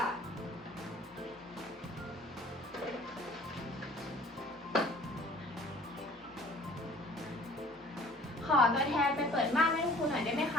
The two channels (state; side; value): normal; both; correlation 0.51